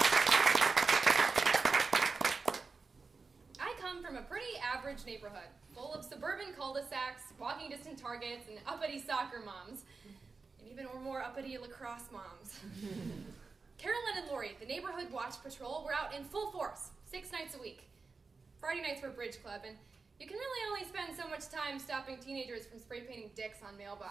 I come from a pretty average neighborhood, full of suburban cul-de-sacs, walking distance Targets, and uppity soccer moms, and even more uppity lacrosse moms. Carolyn and Lori, the neighborhood watch patrol, were out in full force, 6 nights a week. Friday nights were bridge club, and you can really only spend so much time stopping teenagers from spray painting dicks on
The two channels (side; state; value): left; quieter; 4.4 dB